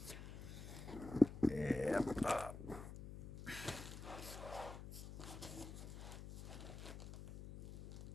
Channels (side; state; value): left; noise; hum, 10 dB below the sound